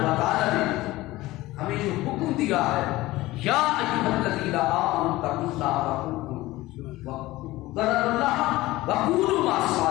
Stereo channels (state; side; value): quieter; right; 18.3 dB